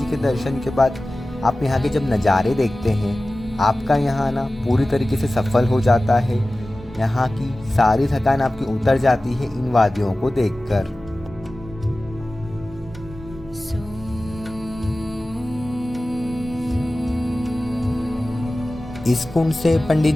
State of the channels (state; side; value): normal; both; correlation 0.96